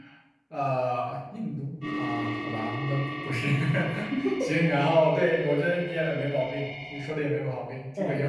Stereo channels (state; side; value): identical; both; correlation 1.00